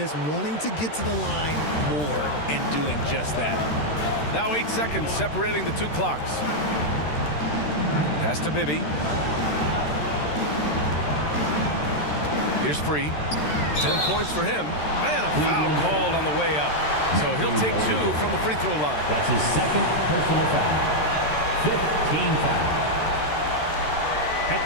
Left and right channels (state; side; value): late; right; 13 ms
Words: wanting to get to the line more and doing just that. Now 8 seconds separating the 2 clocks. Pass to Bibby. Here's free. 10 points for him. And a foul called on the way up. So he'll take 2 from the free throw line. That's his 2nd personal foul. 5th team foul. At